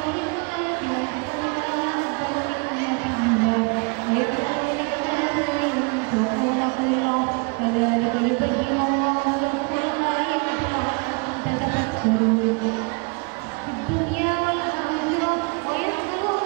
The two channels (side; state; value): left; quieter; 32.1 dB